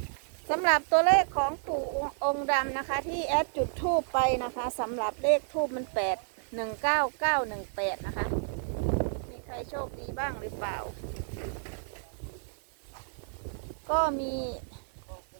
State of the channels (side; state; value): left; silent; digital silence